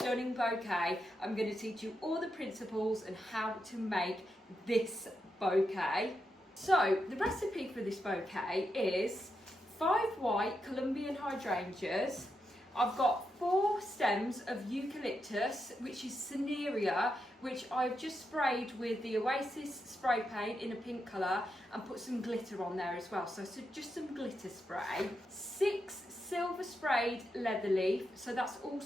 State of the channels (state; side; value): normal; both; correlation 0.85